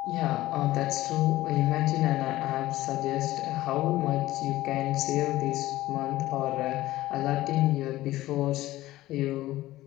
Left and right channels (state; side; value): quieter; right; 16.2 dB